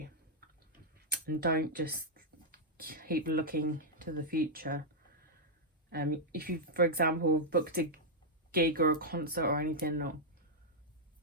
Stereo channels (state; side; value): normal; both; correlation -0.05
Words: and don't just keep looking to the future. If you, for example, booked a gig or a concert or anything, or